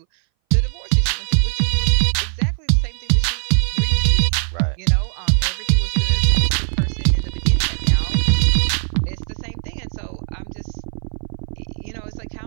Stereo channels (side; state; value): left; silent; 61 dB below the other